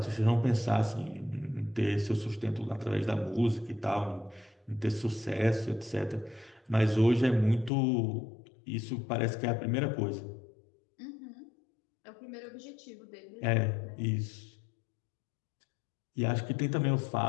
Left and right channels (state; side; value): drops out; right; at 7.7 s